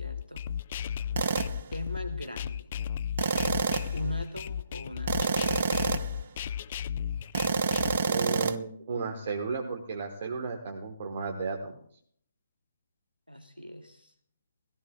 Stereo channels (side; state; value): both; inverted; correlation -0.71